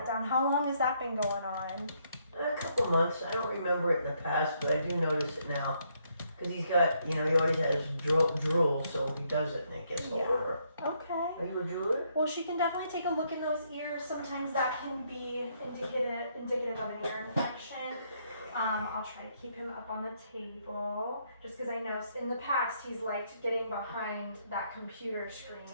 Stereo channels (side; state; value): both; inverted; correlation -0.73